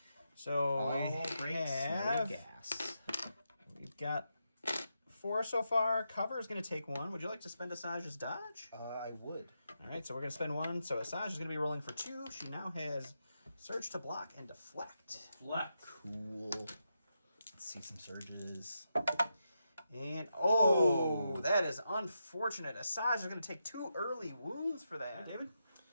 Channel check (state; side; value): inverted; both; correlation -0.85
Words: So All we breaks, no have, gas. we've got 4 so far. Cover is going to take 1. Would you like to spend Asajj's dodge? I would. All right, so we're going to spend 1. So Asajj is going to be rolling for 2. She now has surge to block and deflect. Cool. Let's see some surges. And, oh, that is unfortunate. Asajj is going to take 2 early wounds for that. David?